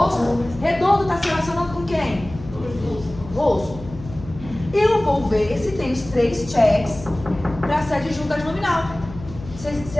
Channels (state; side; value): noise; left; hum, 14 dB below the sound